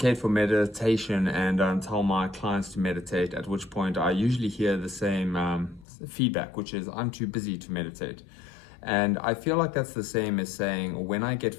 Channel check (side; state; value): right; drops out; at 5.9 s